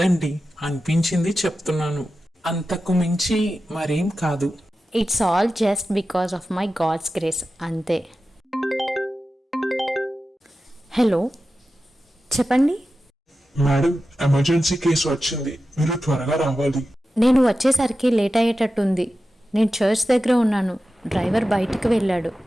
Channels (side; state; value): both; normal; correlation 0.93